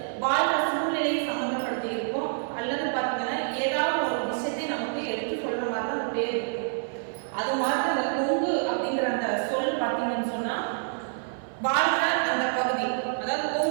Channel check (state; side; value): silent; left; 60 dB below the other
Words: வாழ்ற சூழ்நிலையை சம்மந்தப்படுத்தி இருக்கும், அல்லது பார்த்தீங்கன்னா ஏதாவது ஒரு விஷயத்தை நமக்கு எடுத்து சொல்ற மாதிரி தான் அந்த பேர் இருக்கும். அது மாதிரி அந்த கொங்கு அப்படிங்கிற அந்த சொல் பார்த்தீங்கன்னு சொன்னா வாழ்ற அந்த பகுதி, அதாவது